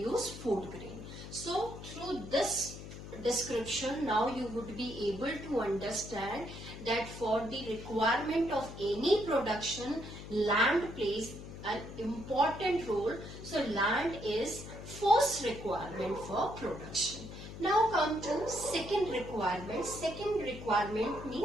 food grain. So through this description now you would be able to understand that for the requirement of any production land plays an important role. So land is first requirement for production. Now come to second requirement. Second requirement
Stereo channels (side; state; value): left; noise; hum, 12 dB below the sound